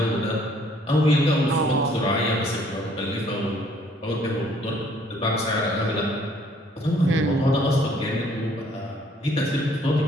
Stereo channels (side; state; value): both; normal; correlation 0.61